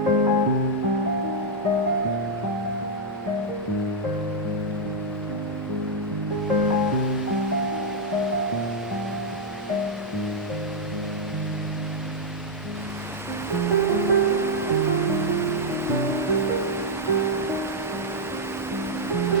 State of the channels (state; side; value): normal; both; correlation -0.03